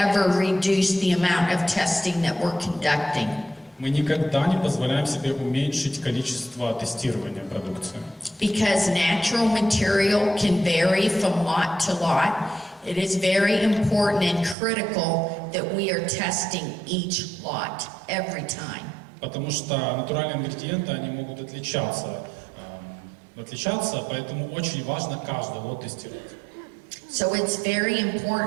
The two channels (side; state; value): left; drops out; at 14.6 s